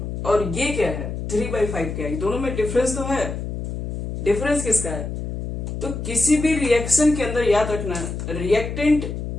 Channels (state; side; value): noise; left; hum, 5 dB below the sound